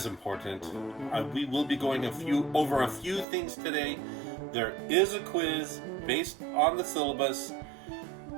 important. We will be going over a few things today. There is a quiz based on the syllabus.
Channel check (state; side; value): drops out; left; at 3.2 s